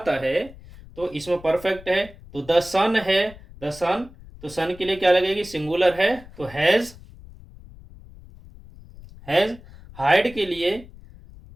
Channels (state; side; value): noise; left; rumble, 20 dB below the sound